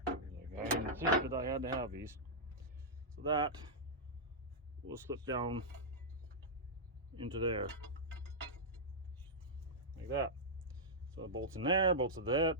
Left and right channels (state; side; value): normal; both; correlation -0.10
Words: Like I insisted I had to have these. So that will slip down into there, like that. So it bolts in there, bolts to that,